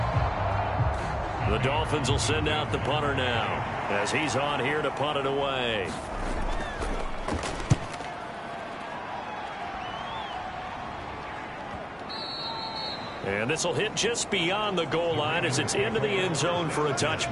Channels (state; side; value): identical; both; correlation 1.00